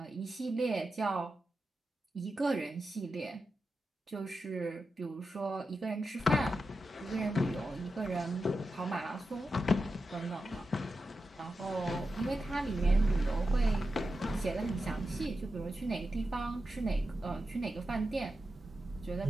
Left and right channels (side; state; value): both; normal; correlation 0.90